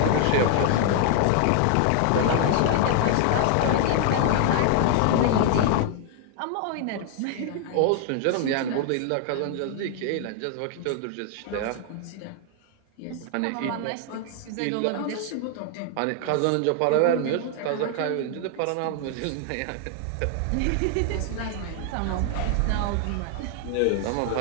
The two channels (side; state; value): both; different; correlation 0.00